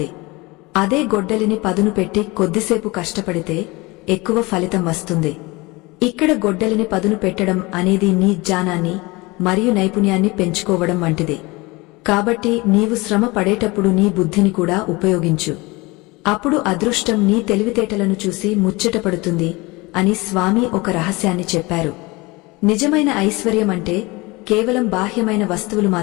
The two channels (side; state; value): right; quieter; 23.6 dB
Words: అదే గొడ్డలిని పదును పెట్టి కొద్దిసేపు కష్టపడితే ఎక్కువ ఫలితం వస్తుంది. ఇక్కడ గొడ్డలిని పదును పెట్టడం అనేది నీ జ్ఞానాన్ని మరియు నైపుణ్యాన్ని పెంచుకోవడం వంటిది. కాబట్టి నీవు శ్రమ పడేటప్పుడు నీ బుద్ధిని కూడా ఉపయోగించు. అప్పుడు అదృష్టం నీ తెలివితేటలను చూసి ముచ్చటపడుతుంది అని స్వామి ఒక రహస్యాన్ని చెప్పారు. నిజమైన ఐశ్వర్యం అంటే కేవలం బాహ్యమైన వస్తువులు